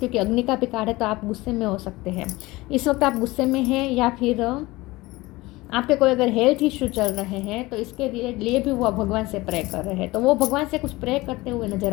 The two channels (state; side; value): quieter; right; 20.5 dB